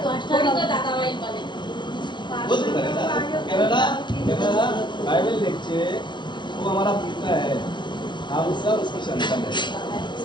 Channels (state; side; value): late; right; 0.22 ms